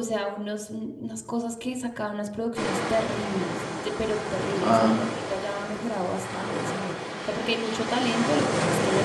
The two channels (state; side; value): identical; both; correlation 1.00